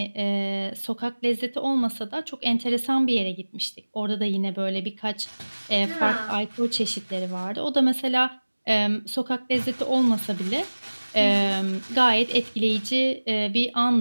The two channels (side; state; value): both; inverted; correlation -1.00